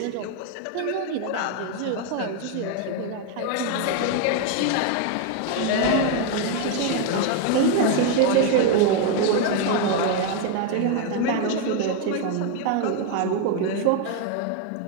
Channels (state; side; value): different; both; correlation 0.01